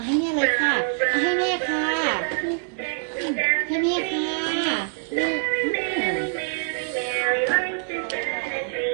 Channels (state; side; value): silent; left; 62 dB below the other